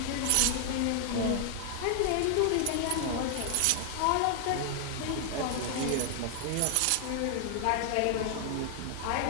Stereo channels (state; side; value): different; both; correlation 0.00